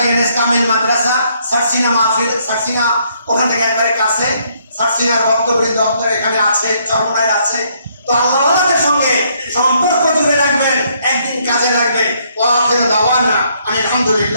এনএস কামিল মাদ্রাসা, সারসিনা মাহফিল, সারসিনা ওখান থেকে একবারে কাছে, সারসিনার বক্তব্য দপ্তর এখানে আছে, চরমনায় আছে। তো আল্লাহর সঙ্গে সম্পর্ক জুড়ে রাখবেন, একদিন কাজে লাগবে। ওয়া আখিরু দাওয়ানা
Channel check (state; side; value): inverted; both; correlation -0.69